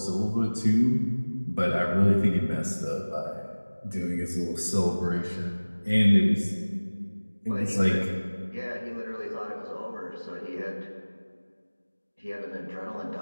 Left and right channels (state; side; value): inverted; both; correlation -1.00